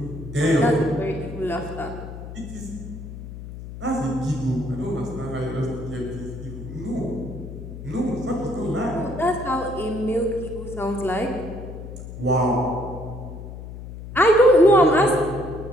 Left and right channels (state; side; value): noise; left; hum, 11 dB below the sound